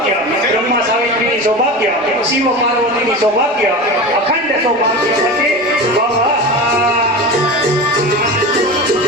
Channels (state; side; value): normal; both; correlation 0.28